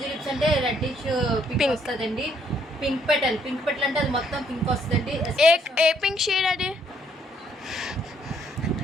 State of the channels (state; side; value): normal; both; correlation 0.68